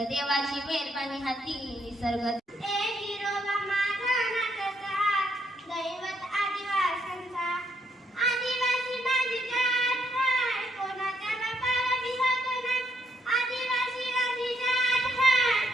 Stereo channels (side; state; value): both; normal; correlation 0.74